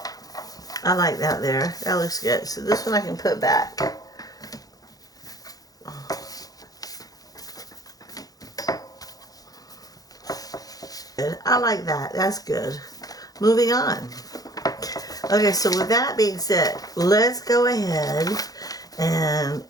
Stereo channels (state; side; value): late; right; 0.18 ms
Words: I like that there. That looks good. So this one I can put back. Good. I like that. That's good. Moving on. Okay, so with that being said, let's go ahead and